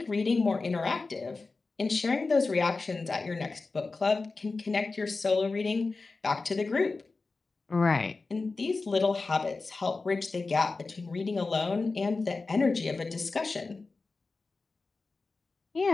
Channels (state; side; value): quieter; right; 3.9 dB